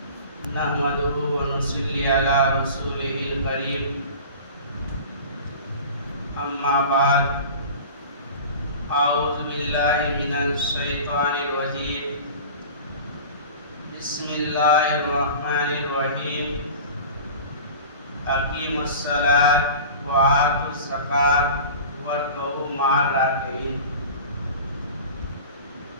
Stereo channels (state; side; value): inverted; both; correlation -0.37